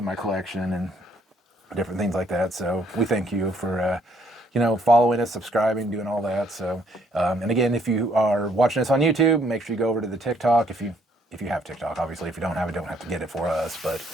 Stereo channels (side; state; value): both; normal; correlation 0.67